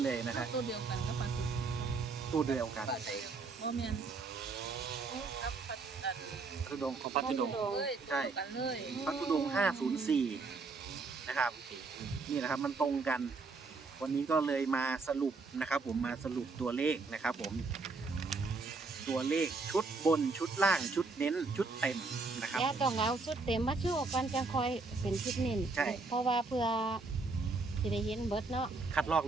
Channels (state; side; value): quieter; left; 4.0 dB